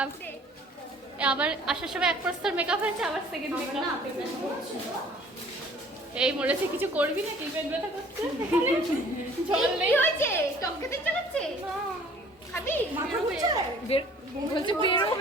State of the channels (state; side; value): normal; both; correlation 0.53